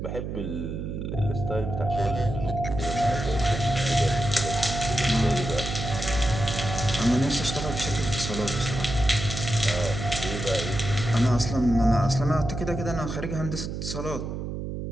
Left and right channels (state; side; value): noise; right; hum, 5 dB below the sound